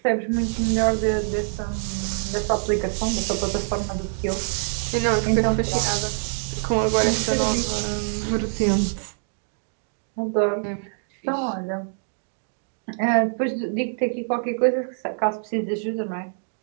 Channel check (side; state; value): left; silent; digital silence